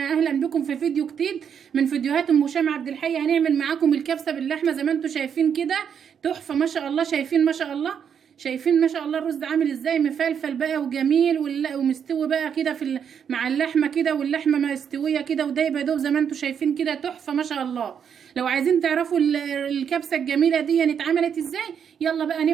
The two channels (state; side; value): quieter; left; 7.8 dB